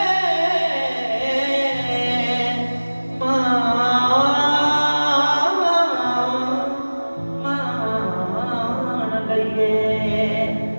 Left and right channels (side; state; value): both; inverted; correlation -1.00